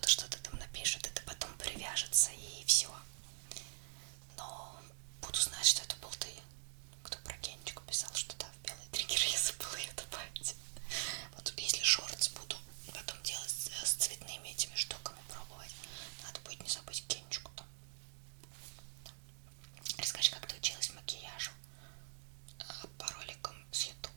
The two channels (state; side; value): silent; left; digital silence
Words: что-то там напишет, это потом привяжется и все. Но буду знать, что это был ты. Кто про Генчику писал, что да, в белый триггер я забыла ее добавить. Вот если шортс буду потом делать с цветными этими штуками пробовать, надо будет не забыть Генчику там. Да. Расскажи, как ты училась макияжу по роликам с